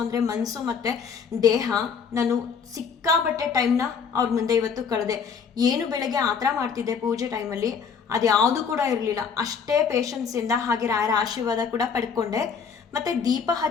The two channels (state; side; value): quieter; right; 6.3 dB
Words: ಅಂದರೆ ಮನಸ್ಸು ಮತ್ತು ದೇಹ. ನಾನು ಸಿಕ್ಕಾಬಟ್ಟೆ ಟೈಮ್ನ ಅವ್ರ ಮುಂದೆ ಇವತ್ತು ಕಳೆದೆ. ಏನು ಬೆಳಗ್ಗೆ ಆ ಥರ ಮಾಡ್ತಿದ್ದೆ ಪೂಜೆ ಟೈಮಲ್ಲಿ, ಅದು ಯಾವುದು ಕೂಡ ಇರಲಿಲ್ಲ. ಅಷ್ಟೇ ಪೇಷನ್ಸಿಂದ ಹಾಗೆ ರಾಯರ ಆಶೀರ್ವಾದ ಕೂಡ ಪಡ್ಕೊಂಡೆ. ಮತ್ತು ದೀಪ